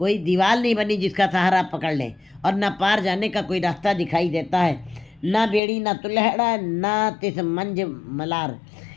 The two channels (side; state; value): right; drops out; at 5.6 s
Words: दीवार नहीं बनी जिसका सहारा आप पकड़ लें, और ना पार जाने का कोई रास्ता दिखाई देता है। ना बेड़ी ना तुलहड़ा ना तिस मंज मलार,